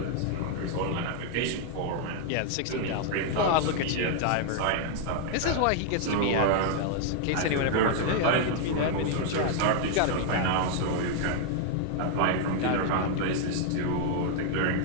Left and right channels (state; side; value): different; both; correlation 0.00